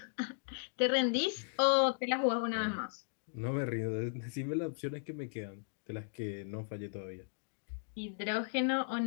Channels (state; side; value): silent; right; digital silence